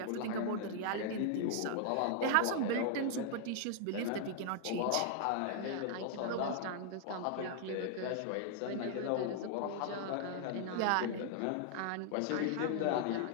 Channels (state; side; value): different; both; correlation 0.00